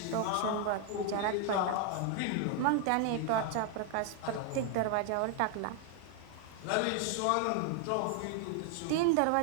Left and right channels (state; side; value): different; both; correlation 0.00